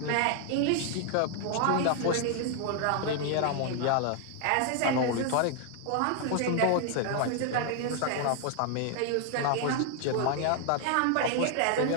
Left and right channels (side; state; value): both; different; correlation 0.00